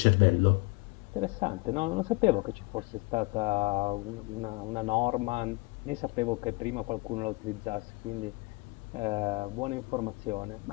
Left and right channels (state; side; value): quieter; right; 25.7 dB